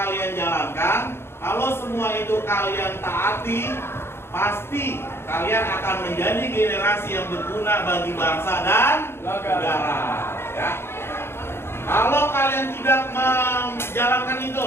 jalankan, kalau semua itu kalian taati, pasti kalian akan menjadi generasi yang berguna bagi bangsa dan negara, ya. Kalau kalian tidak menjalankan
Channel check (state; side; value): late; right; 0.12 ms